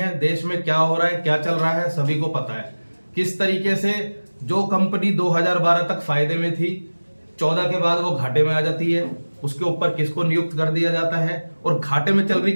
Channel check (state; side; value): inverted; both; correlation -1.00